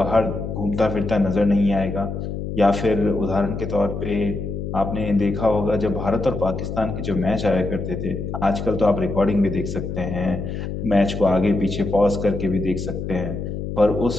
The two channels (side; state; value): left; noise; hum, 5 dB below the sound